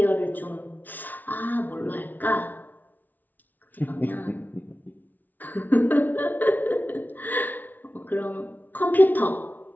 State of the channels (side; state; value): right; late; 0.083 ms